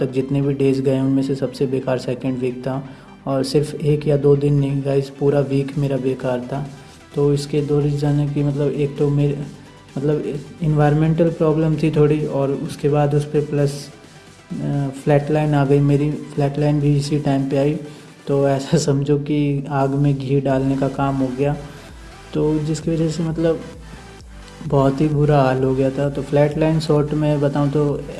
तक जितने भी डेज़ गए उनमें से सबसे बेकार सेकंड वीक था। और सिर्फ एक या दो दिन नहीं गाइस, पूरा वीक मेरा बेकार था। तो इसके दो रीज़न है कि मतलब एक तो मेरे मतलब इन्वायरमेंटल प्रॉब्लम थी थोड़ी, और उसके बाद उस पर प्लस फ्लैट लाइन आ गई। मेरी फ्लैट लाइन भी इसी टाइम पे आई। तो ऐसा समझो कि आग में घी डालने का काम हो गया। तो जिसकी वजह से मतलब बहुत ही बुरा हाल हो गया था। तो फ्लैट लाइन शॉर्ट में बताऊं तो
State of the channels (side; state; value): both; identical; correlation 1.00